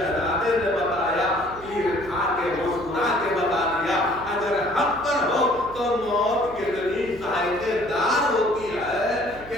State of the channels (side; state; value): right; noise; hum, 18 dB below the sound